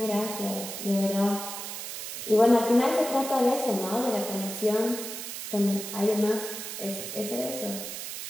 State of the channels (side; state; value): right; noise; hiss, 7 dB below the sound